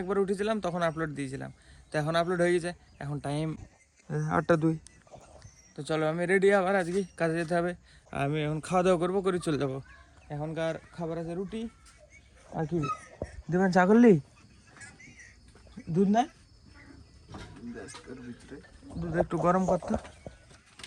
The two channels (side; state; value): both; identical; correlation 1.00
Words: একবার উঠেছিলাম, তখন আপলোড দিয়েছিলাম। তো এখন আপলোড হয়ে গেছে, এখন টাইম 8টা 2। তো চলো আমি রেডি, আবার আজকে কাজে যেতে হবে। আমি এখন খাওয়া দাওয়া করবো, করে চলে যাবো। এখনকার খাবার আছে রুটি আর কি দেবেন, চা করলি, দুধ না, দুধ একটু গরম করতো,